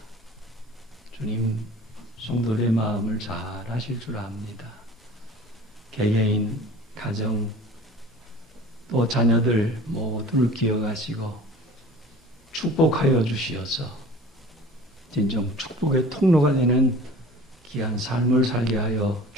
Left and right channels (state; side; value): normal; both; correlation 0.42